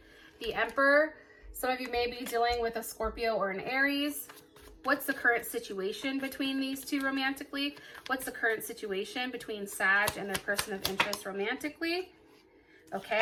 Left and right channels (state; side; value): identical; both; correlation 1.00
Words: The Emperor. Some of you may be dealing with a Scorpio or an Aries. What's the current situation between these two romantically? What's the current situation between Sag and their person of interest romantically?